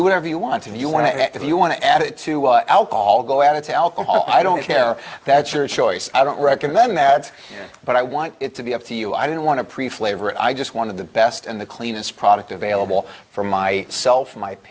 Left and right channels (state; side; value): identical; both; correlation 1.00